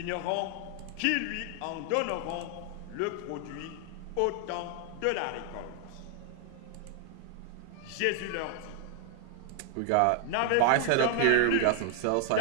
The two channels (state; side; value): different; both; correlation 0.00